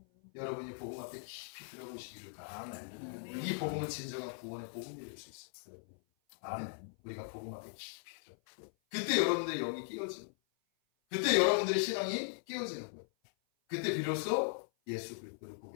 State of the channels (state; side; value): silent; right; 52 dB below the other